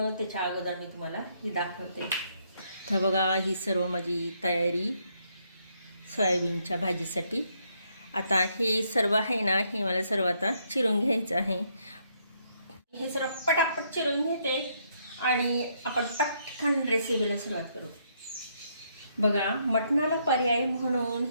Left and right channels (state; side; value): inverted; both; correlation -0.73